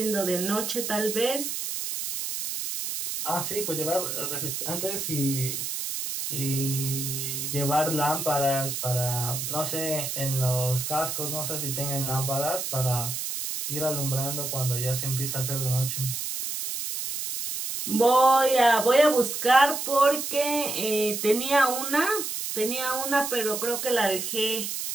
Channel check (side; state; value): right; noise; hiss, 4 dB below the sound